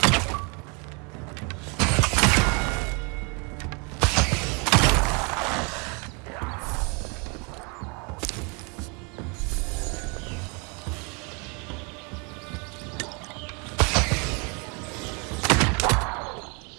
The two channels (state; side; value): quieter; left; 32.7 dB